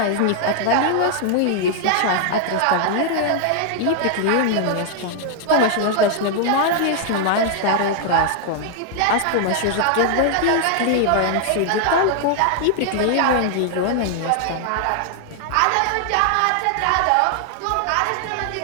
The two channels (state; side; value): different; both; correlation 0.00